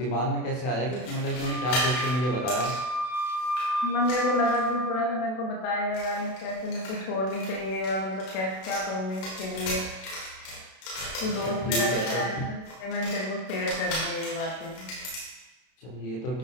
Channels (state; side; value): late; right; 32 ms